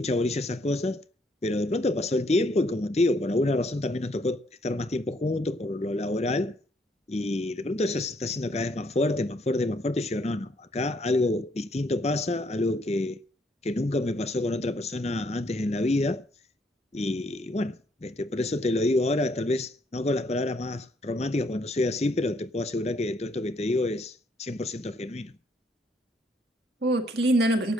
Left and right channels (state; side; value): normal; both; correlation 0.69